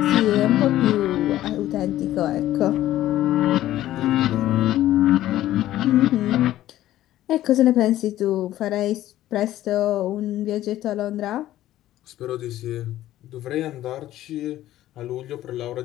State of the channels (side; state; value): right; quieter; 13.9 dB